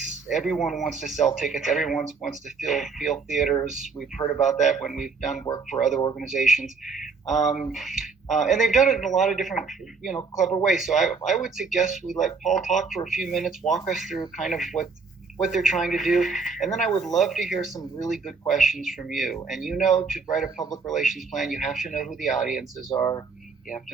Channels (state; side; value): quieter; left; 4.8 dB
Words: everyone wants to sell tickets. Everyone wants to fill theaters. We've heard about that when we've done work for other organizations. And they've done it in a lot of different, clever ways. So I would suggest we let Paul talk for a few minutes, walk us through kind of what they're trying to do. And then I would love to hear some really good questions from you. And to write a public relations plan, you have to know who the audiences are. You have